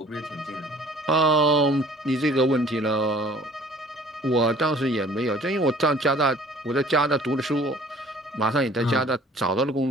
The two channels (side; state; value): both; normal; correlation 0.52